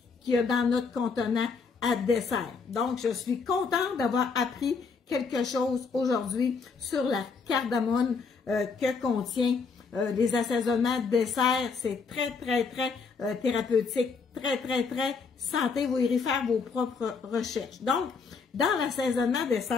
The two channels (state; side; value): quieter; right; 5.0 dB